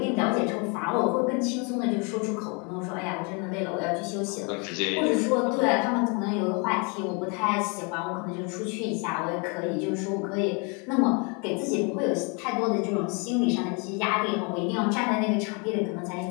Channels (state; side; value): quieter; right; 33.0 dB